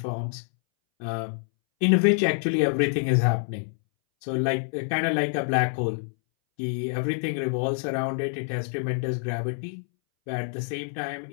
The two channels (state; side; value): silent; right; 61 dB below the other